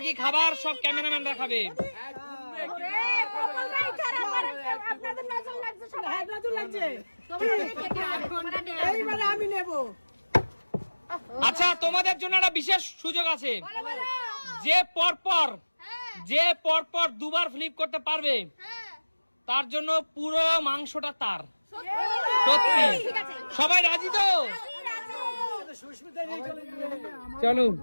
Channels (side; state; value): both; inverted; correlation -1.00